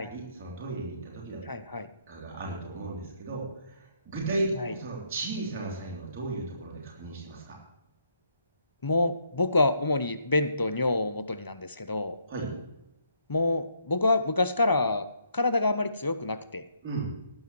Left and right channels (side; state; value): both; inverted; correlation -0.72